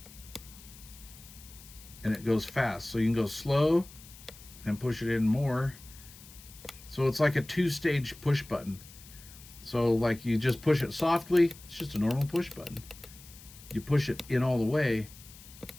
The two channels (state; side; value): noise; left; hiss, 19 dB below the sound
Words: and it goes fast. So you can go slow and push it in more. So it's like a 2-stage push button. So like you just push it softly, it's just a normal push button. You push it in all the way